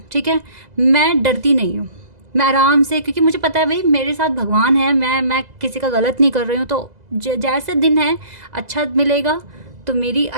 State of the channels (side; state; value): left; late; 2.0 ms